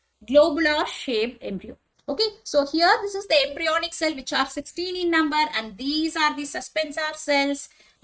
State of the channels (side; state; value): both; identical; correlation 1.00